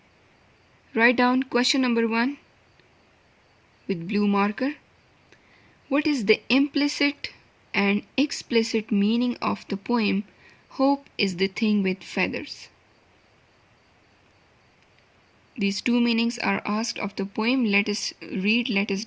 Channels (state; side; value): identical; both; correlation 1.00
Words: Write down question number 1 with blue marker. What is the implicit and explicit meaning of the poem Hope is the Thing with Feathers? These two meanings are asked of the poem. Let us read, let us